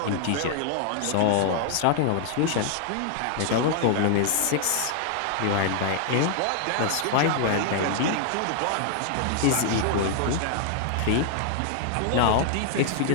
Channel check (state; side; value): different; both; correlation 0.00